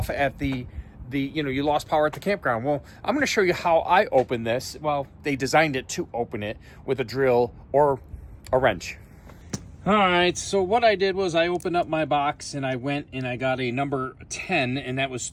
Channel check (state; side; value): identical; both; correlation 1.00